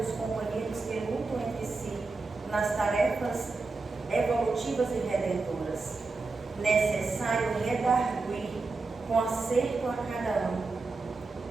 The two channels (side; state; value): left; quieter; 3.8 dB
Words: companheiros que lutam entre si nas tarefas evolutivas e redentoras. Necessário redarguir com acerto a cada um.